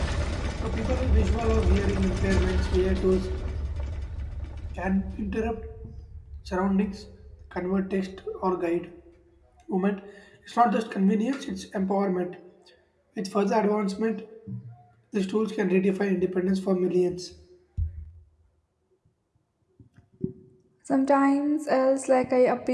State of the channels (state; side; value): identical; both; correlation 1.00